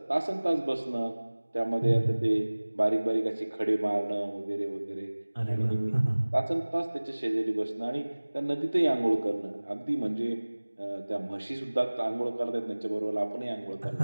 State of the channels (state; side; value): inverted; both; correlation -1.00